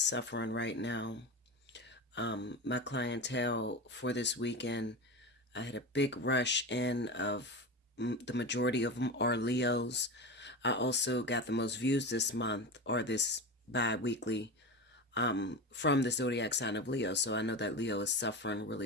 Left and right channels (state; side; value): normal; both; correlation 0.24